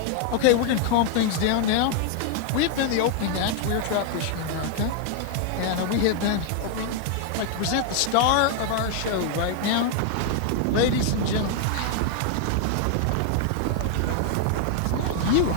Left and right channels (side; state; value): both; different; correlation 0.00